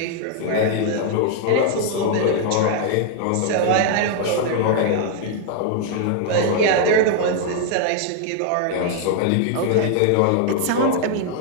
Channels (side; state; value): both; different; correlation 0.00